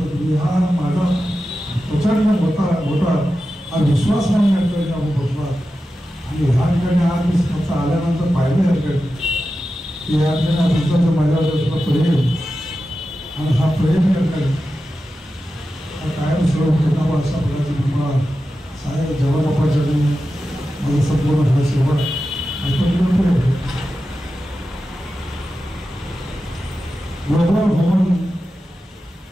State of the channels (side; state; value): both; normal; correlation 0.92